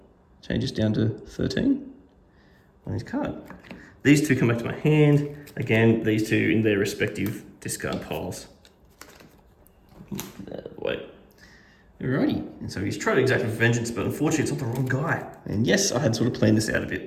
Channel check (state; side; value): identical; both; correlation 1.00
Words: changes down to 13 on his card. These 2 come back to my hand. Again, these 2 in their respective discard piles. Wait. Alrighty. And so he's tried to exact vengeance, but unfortunately it's not the wrong guy. And yes, I had sort of planned this out a